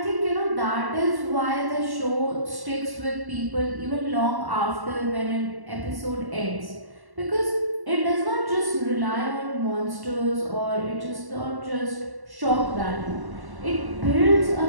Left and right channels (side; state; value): left; late; 1.1 ms